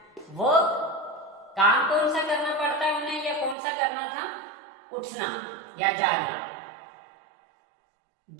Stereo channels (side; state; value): left; drops out; at 3.6 s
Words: वो काम कौन सा करना पड़ता है उन्हें, या कौन सा करना था? उठना या जागना,